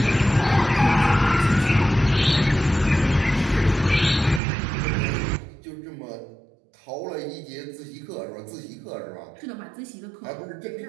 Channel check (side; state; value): left; drops out; at 4.4 s